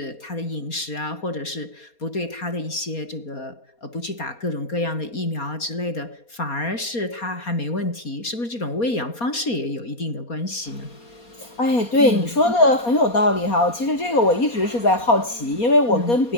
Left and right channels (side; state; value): right; late; 4.2 ms